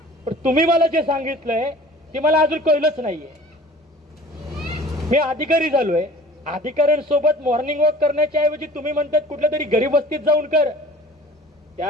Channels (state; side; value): normal; both; correlation 0.46